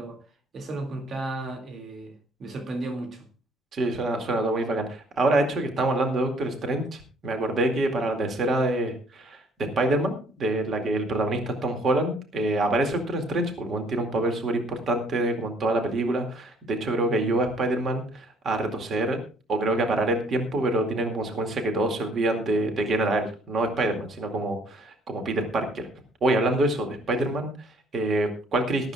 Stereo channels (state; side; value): normal; both; correlation 0.61